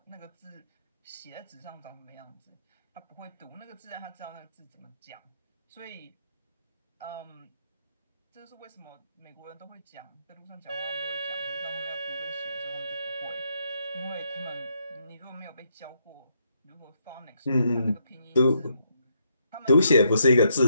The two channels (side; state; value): both; inverted; correlation -0.76